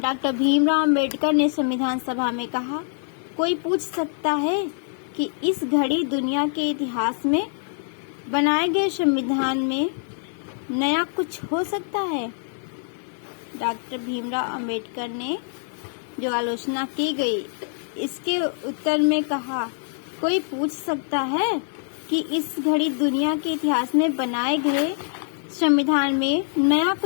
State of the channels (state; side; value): silent; right; 62 dB below the other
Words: भीमराव अंबेडकर ने संविधान सभा में कहा, कोई पूछ सकता है कि इस घड़ी दुनिया के इतिहास में बनाए गए संविधान में नया कुछ हो सकता है? डॉक्टर भीमराव अंबेडकर ने जो आलोचना की गई, इसके उत्तर में कहा, कोई पूछ सकता है कि इस घड़ी दुनिया के इतिहास में बनाए गए संविधान में नया